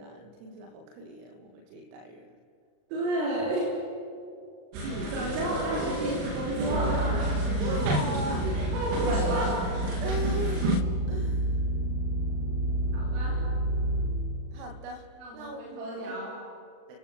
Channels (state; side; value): late; left; 39 ms